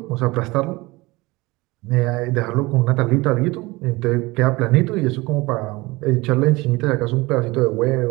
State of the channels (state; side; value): quieter; left; 22.3 dB